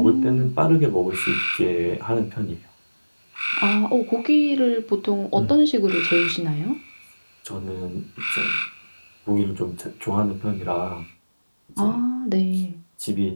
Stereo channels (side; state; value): both; inverted; correlation -1.00